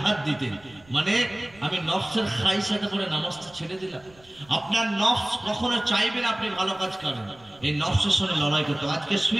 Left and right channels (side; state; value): right; noise; rumble, 27 dB below the sound